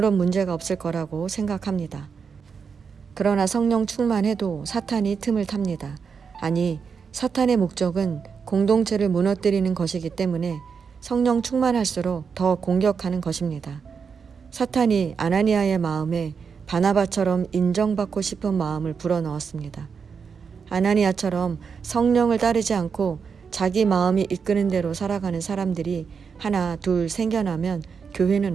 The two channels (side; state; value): left; quieter; 6.0 dB